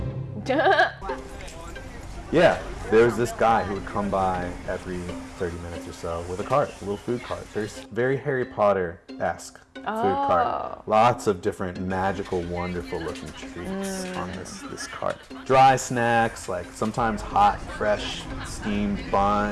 Yeah, there was this guy who would come by every 30 minutes or so with a cart, a little food cart. There's very Harry Potter-esque food cart. Lots of different magical, wonderful looking treats on this cart. Dry snacks, like sometimes hot, fresh, steamed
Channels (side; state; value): both; identical; correlation 1.00